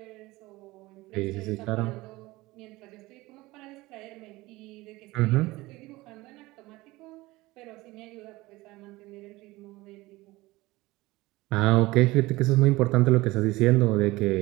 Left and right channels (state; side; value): quieter; left; 20.1 dB